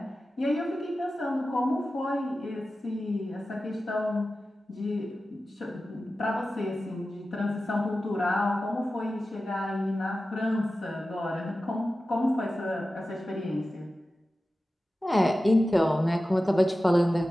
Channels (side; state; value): both; normal; correlation 0.94